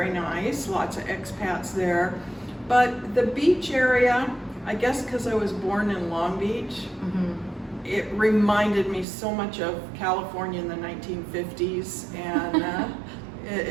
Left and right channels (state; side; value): drops out; left; at 9.1 s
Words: nice, lots of expats there. But the beach area, I guess because I was born in Long Beach, it reminded me so much of California in the 1950s, and